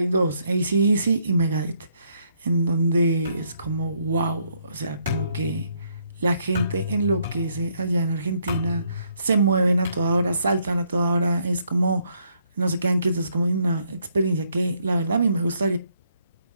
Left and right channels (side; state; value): both; inverted; correlation -0.72